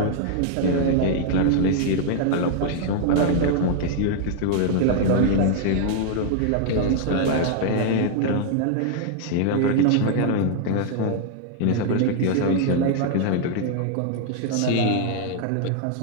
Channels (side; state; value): both; different; correlation 0.00